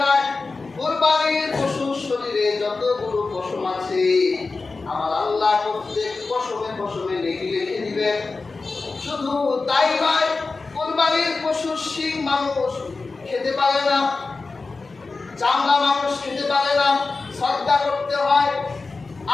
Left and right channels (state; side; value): quieter; right; 3.9 dB